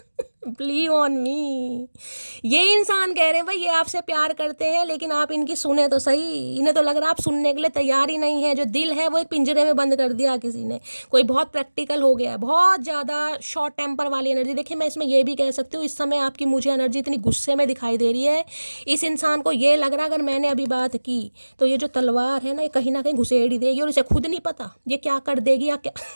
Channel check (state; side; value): inverted; both; correlation -1.00